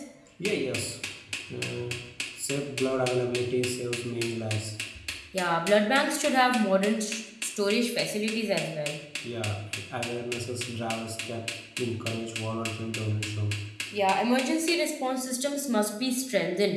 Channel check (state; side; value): identical; both; correlation 1.00